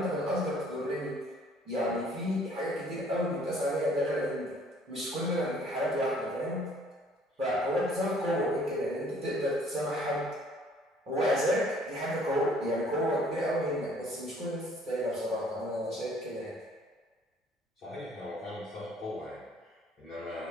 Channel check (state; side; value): normal; both; correlation 0.58